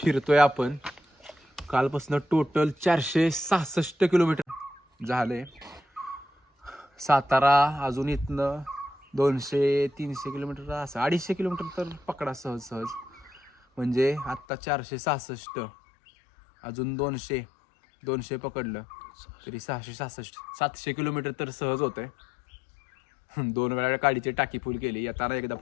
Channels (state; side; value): drops out; right; at 14.5 s